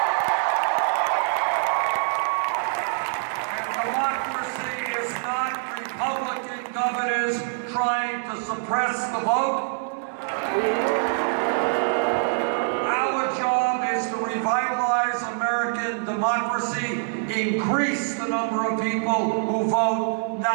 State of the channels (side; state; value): left; silent; digital silence